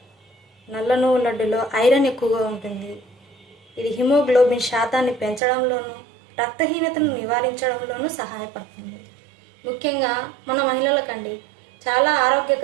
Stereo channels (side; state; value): left; drops out; at 5.4 s